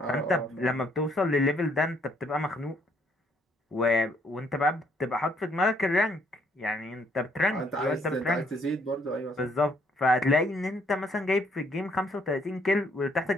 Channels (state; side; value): normal; both; correlation 0.68